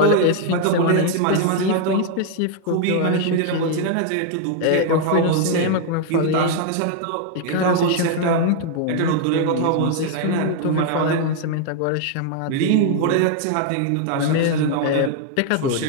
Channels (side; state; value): both; different; correlation 0.00